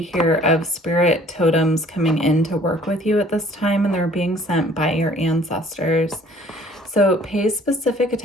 here of spirit totems coming in to work with you at this time, and they're being sent by your ancestors. So pay specific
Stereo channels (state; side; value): normal; both; correlation 0.55